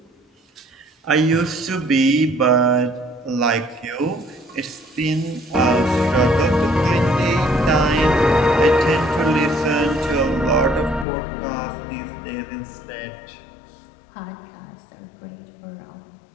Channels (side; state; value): right; drops out; at 11.1 s